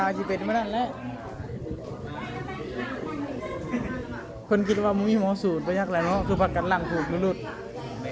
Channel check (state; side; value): identical; both; correlation 1.00